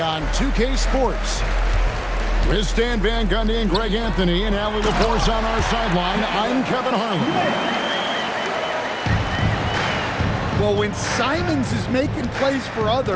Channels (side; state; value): both; identical; correlation 1.00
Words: on 2K Sports. With Stan Van Gundy and Greg Anthony and Allie LaForce on our sideline, I'm Kevin Harlan. Well, when Simons is making plays for